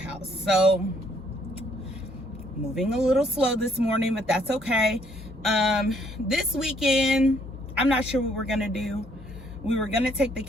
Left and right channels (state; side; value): normal; both; correlation 0.67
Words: So, moving a little slow this morning, but that's okay. This weekend, I'm not sure what we're gonna do. We were gonna take the